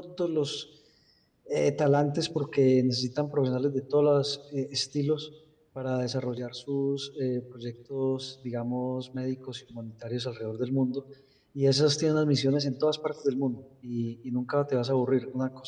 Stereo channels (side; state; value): both; identical; correlation 1.00